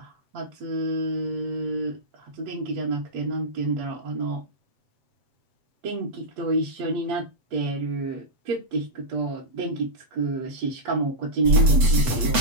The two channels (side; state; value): left; late; 7.9 ms